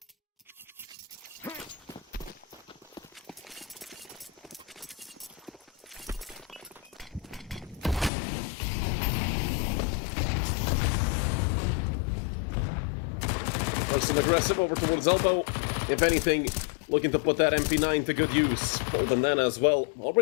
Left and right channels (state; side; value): drops out; right; at 8.1 s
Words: Some aggressive over towards elbow. If anything, looking to put that MP9 to good use. Full bandana as well.